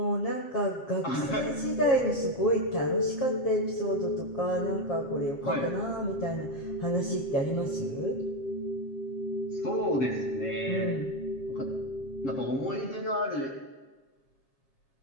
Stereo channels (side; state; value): right; late; 7.5 ms